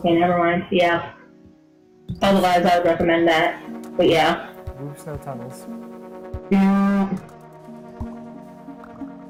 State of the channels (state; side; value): identical; both; correlation 1.00